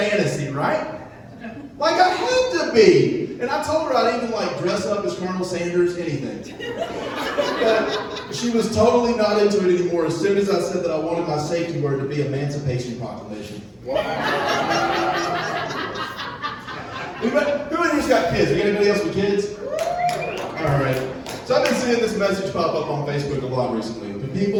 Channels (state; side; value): identical; both; correlation 1.00